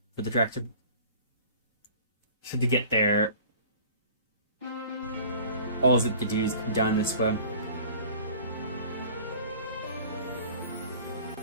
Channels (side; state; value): both; inverted; correlation -0.46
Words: for the tractor. So to get there, all it to do is go down this way.